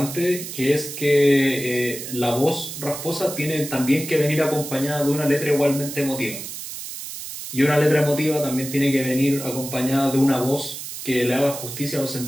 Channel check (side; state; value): right; noise; hiss, 9 dB below the sound